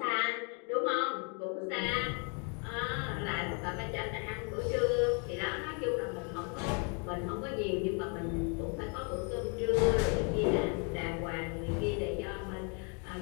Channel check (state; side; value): quieter; right; 37.4 dB